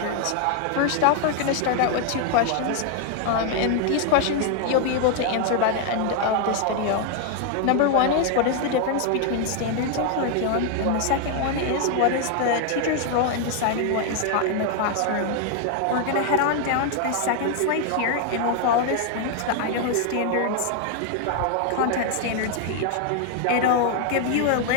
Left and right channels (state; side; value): different; both; correlation 0.00